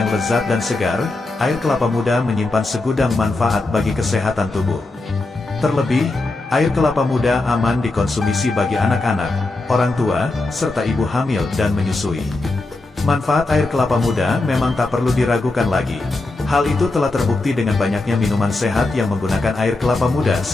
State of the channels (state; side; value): quieter; right; 3.1 dB